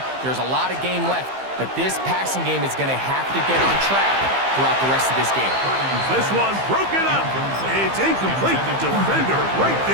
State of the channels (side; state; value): left; late; 15 ms